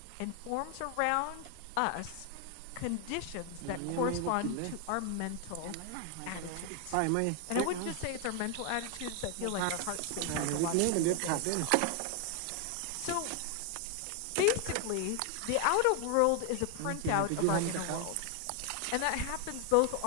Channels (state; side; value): different; both; correlation 0.00